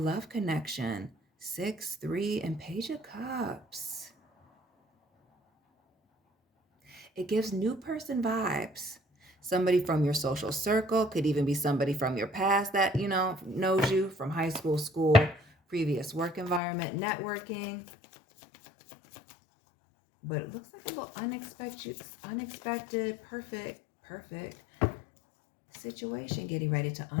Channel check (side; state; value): right; drops out; at 16.6 s